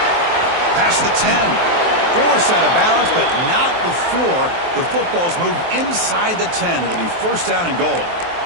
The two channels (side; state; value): left; late; 23 ms